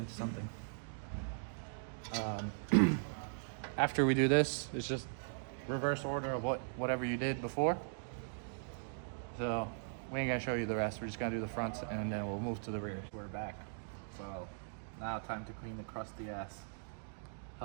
something. After we do this, it's just reverse order of whatever you did before. So we ain't gonna show you the rest. We're just gonna do the fronts and then we'll move to the rear. We're back. So now time to clean the crusty ass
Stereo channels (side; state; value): left; silent; digital silence